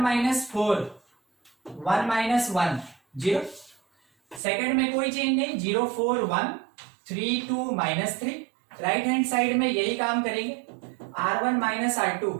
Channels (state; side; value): drops out; left; at 4.4 s